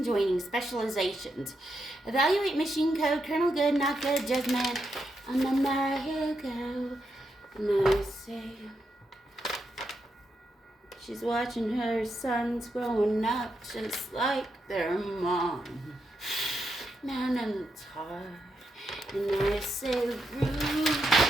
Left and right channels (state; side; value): normal; both; correlation 0.83